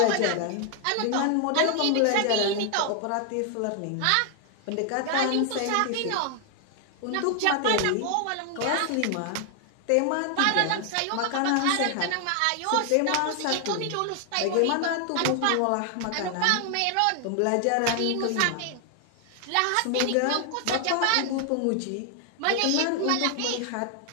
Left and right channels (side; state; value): both; different; correlation 0.00